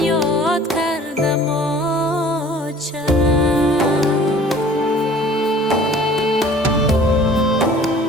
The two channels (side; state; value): both; normal; correlation 0.50